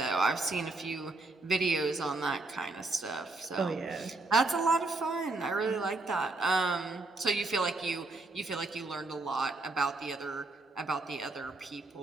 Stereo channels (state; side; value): quieter; left; 3.1 dB